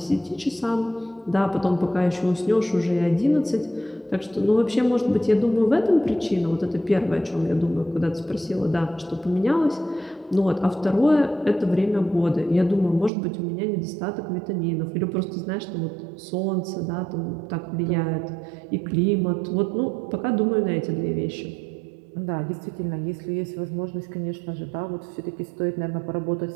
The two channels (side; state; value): left; drops out; at 13.1 s